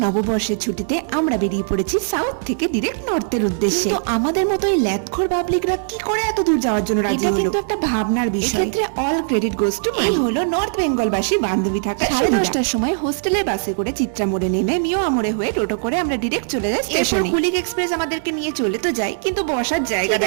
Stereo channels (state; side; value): silent; left; digital silence